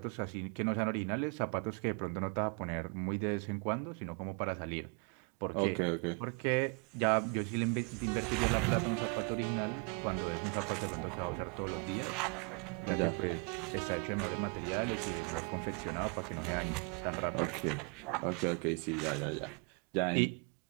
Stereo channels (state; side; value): quieter; left; 34.4 dB